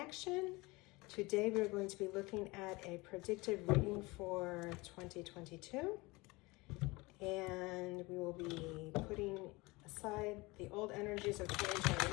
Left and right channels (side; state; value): right; quieter; 23.4 dB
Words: Today we're going to be looking at a predictive reading for 2022. And we will be putting aside the old energies of